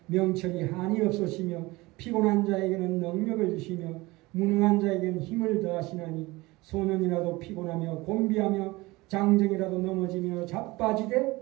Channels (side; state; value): left; quieter; 21.4 dB